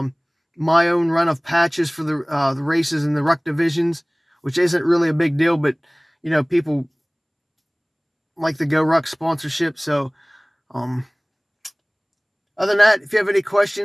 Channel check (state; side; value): identical; both; correlation 1.00